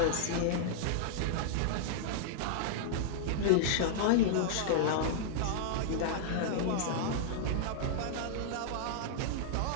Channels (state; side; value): different; both; correlation -0.01